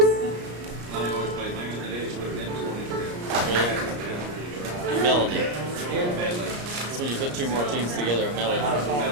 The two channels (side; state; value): left; late; 34 ms